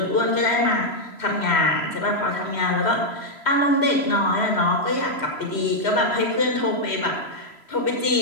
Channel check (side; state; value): right; late; 3.0 ms